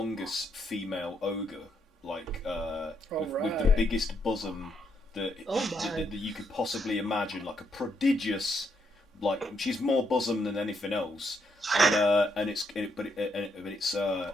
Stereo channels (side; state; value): both; normal; correlation 0.76